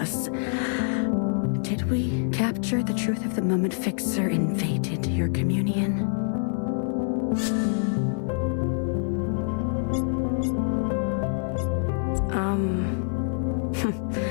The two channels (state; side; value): silent; right; 61 dB below the other